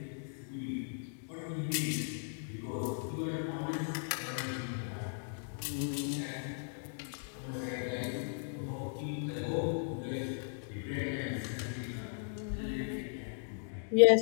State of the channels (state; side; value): silent; right; digital silence